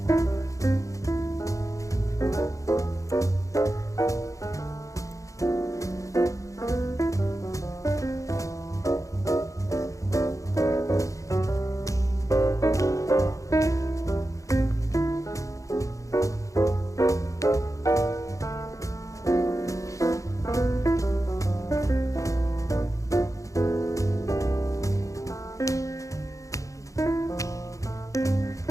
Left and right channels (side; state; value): right; late; 0.16 ms